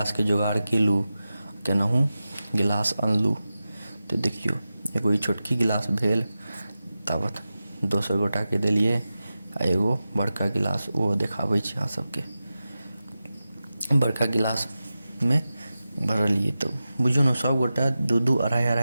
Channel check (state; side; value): inverted; both; correlation -0.93